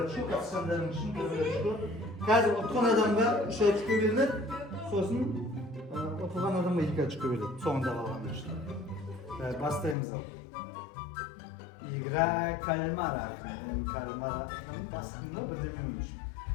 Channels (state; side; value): drops out; right; at 10.0 s